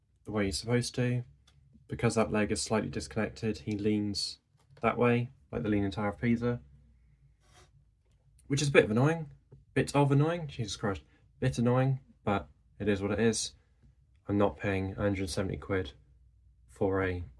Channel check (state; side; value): identical; both; correlation 1.00